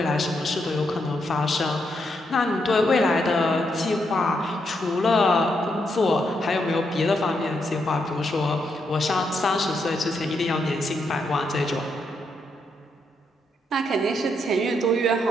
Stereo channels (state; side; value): normal; both; correlation 0.79